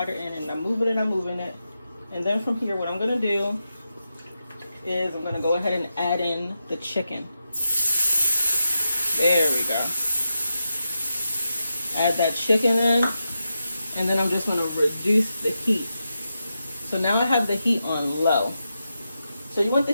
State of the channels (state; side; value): inverted; both; correlation -0.88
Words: in, and I'm moving it. And then from here, what I'm gonna do is I'm gonna go ahead and add in the chicken. There we go. Add that chicken in, and then I'm just gonna reduce the heat. So now I have the heat on low. So you want the